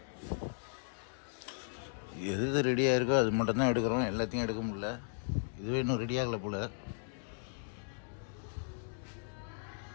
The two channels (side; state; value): right; silent; digital silence